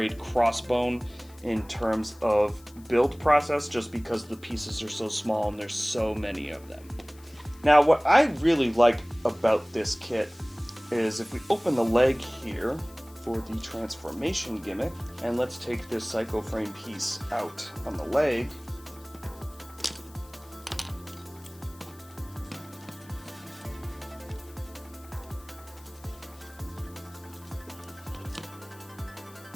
crossbone in terms of build process, just because the pieces are so small and there's so many of them. Now, what I really like about this kit is if we open the leg here for the transformation gimmick, and let's take this psycho frame piece out on the leg.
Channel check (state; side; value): noise; left; hiss, 25 dB below the sound